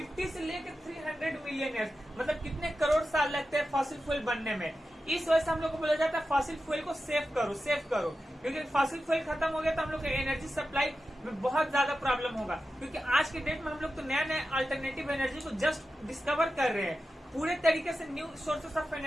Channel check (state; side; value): normal; both; correlation 0.92